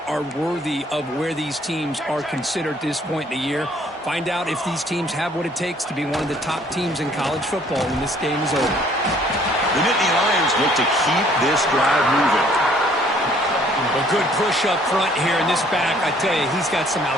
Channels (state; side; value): normal; both; correlation 0.60